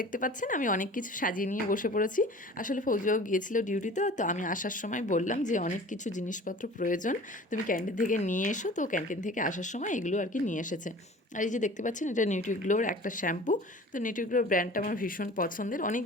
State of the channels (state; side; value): normal; both; correlation 0.43